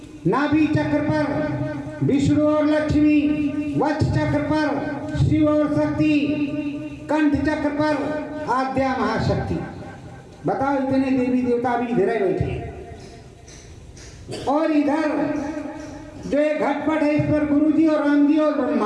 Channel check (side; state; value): both; identical; correlation 1.00